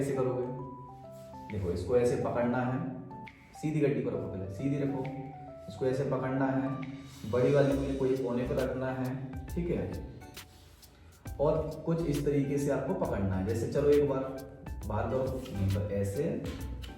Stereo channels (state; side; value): identical; both; correlation 1.00